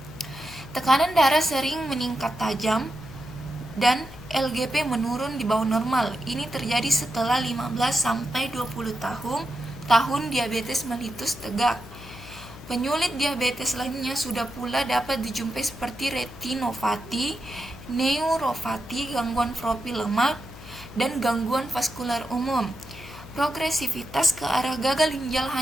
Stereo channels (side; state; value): left; noise; hum, 16 dB below the sound